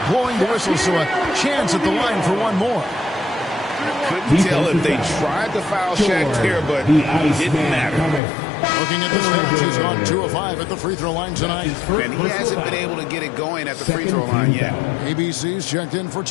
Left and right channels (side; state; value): right; drops out; at 8.2 s